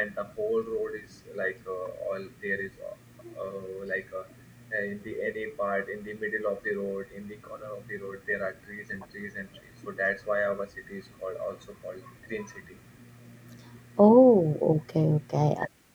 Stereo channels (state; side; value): identical; both; correlation 1.00